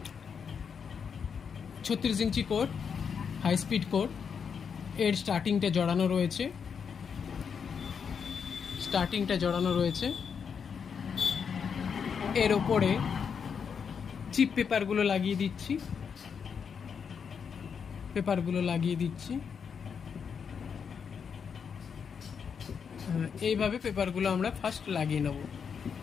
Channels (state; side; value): quieter; right; 6.6 dB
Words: 36 ইঞ্চি কোড, হাই স্পিড কোড। এর স্টার্টিংটা জড়ানো রয়েছে। এর ওপরে চিপ পেপারগুলো লাগিয়ে দিচ্ছি। এইভাবে পেপারগুলো আমরা ফার্স্ট লাগিয়ে নেব।